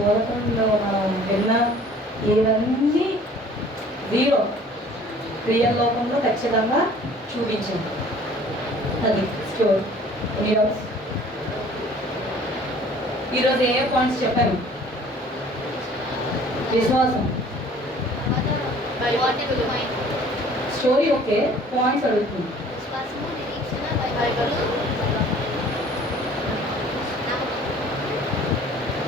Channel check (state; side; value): normal; both; correlation 0.51